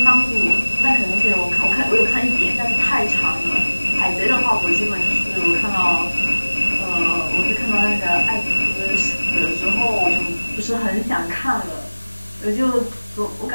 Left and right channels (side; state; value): both; inverted; correlation -1.00